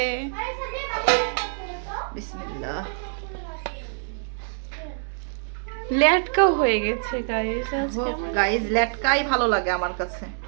বিসমিল্লাহ। লেটকা হয়ে গেছে গাইস আজকে আমার। গাইস লেটকাই ভালো লাগে আমার কাছে।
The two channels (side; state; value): left; silent; 61 dB below the other